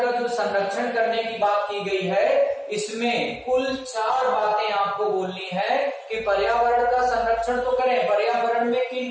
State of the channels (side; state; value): both; identical; correlation 1.00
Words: जो संरक्षण करने की बात की गई है, इसमें कुल 4 बातें आपको बोलनी है कि पर्यावरण का संरक्षण तो करें। पर्यावरण में किन